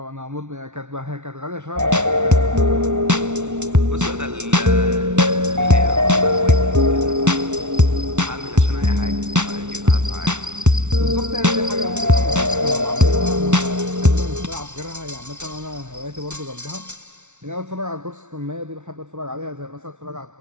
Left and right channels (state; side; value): late; left; 0.84 ms